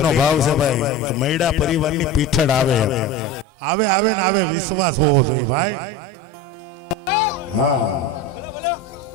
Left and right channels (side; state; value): both; normal; correlation 0.28